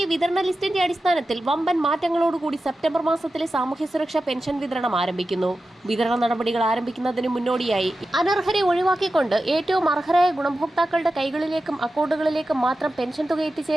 വിതരണ ലിസ്റ്റിന്റെ അടിസ്ഥാനത്തിൽ വമ്പൻ മാറ്റങ്ങളോടുകൂടി സെപ്റ്റംബർ മാസത്തിലെ സാമൂഹ്യ സുരക്ഷാ പെൻഷൻ വിതരണം ആരംഭിക്കുന്നു. വിതരണ നടപടികൾ ആരംഭിക്കുന്നതിന് മുന്നോടിയായി അനർഹരെ ഒഴിവാക്കിക്കൊണ്ട് ഏറ്റവും അർഹരായ ഗുണഭോക്താക്കളുടെ കൈകളിലേക്കും അക്കൗണ്ടുകളിലേക്കും മാത്രം പെൻഷൻ തുക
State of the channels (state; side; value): normal; both; correlation 0.93